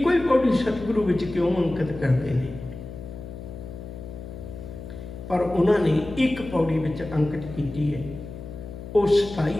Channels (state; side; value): noise; left; hum, 12 dB below the sound